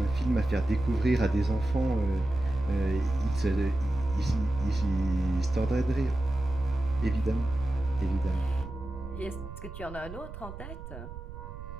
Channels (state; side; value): noise; right; rumble, 12 dB below the sound